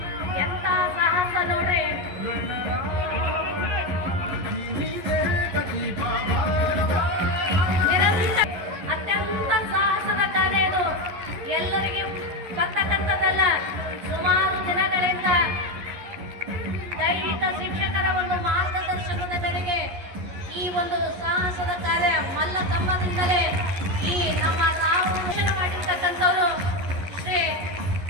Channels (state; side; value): late; left; 11 ms